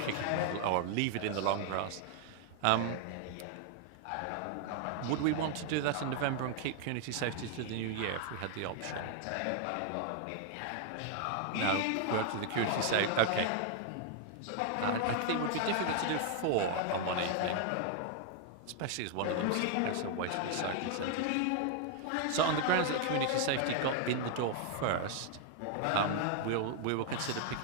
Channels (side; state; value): both; different; correlation 0.00